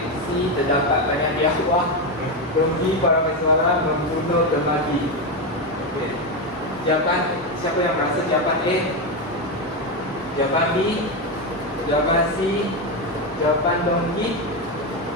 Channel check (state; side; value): normal; both; correlation 0.11